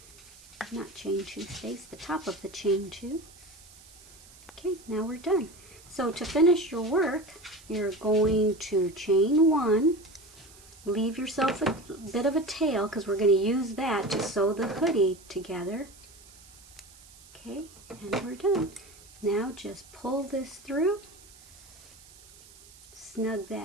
Not chain 2 space, the top of the chain 2. Okay, now we're done. So to finish your work, you're going to chain 1, leave yourself a bit of a tail because we're going to use that to sew the hoodie together. Okay, and we're done. Now just pull this through, snug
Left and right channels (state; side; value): noise; right; hiss, 22 dB below the sound